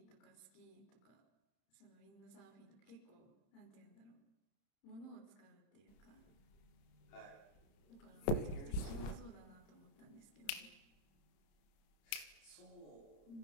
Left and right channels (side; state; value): right; late; 32 ms